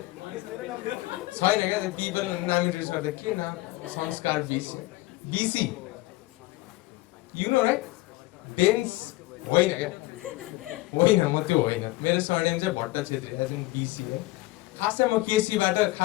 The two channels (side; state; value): right; quieter; 19.8 dB